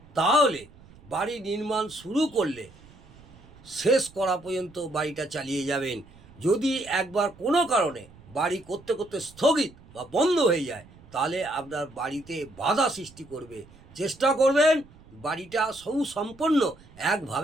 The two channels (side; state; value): right; noise; rumble, 24 dB below the sound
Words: তাহলে বাড়ি নির্মাণ শুরু করলে শেষ করা পর্যন্ত বাড়িটা চালিয়ে যাবেন। যদি একবার কোনো কারণে বাড়ি করতে করতে স্থগিত বা বন্ধ হয়ে যায় তাহলে আপনার বাড়িতে বাধা সৃষ্টি করবে। চেষ্টা করবেন বাড়িটা সুসম্পন্ন